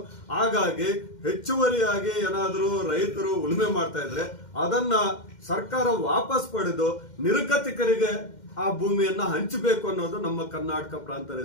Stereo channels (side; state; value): right; late; 2.1 ms